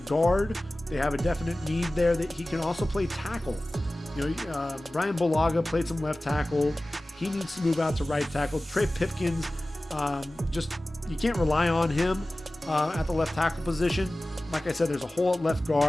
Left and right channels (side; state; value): both; normal; correlation 0.97